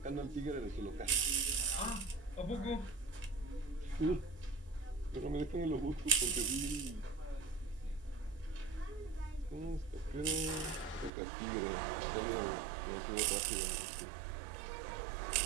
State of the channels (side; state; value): left; drops out; at 11.1 s